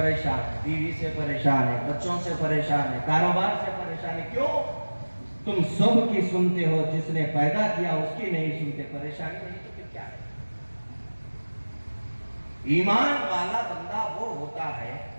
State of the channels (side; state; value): both; inverted; correlation -1.00